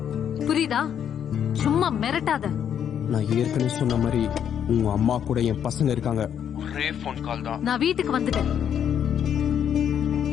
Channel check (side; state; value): right; quieter; 8.9 dB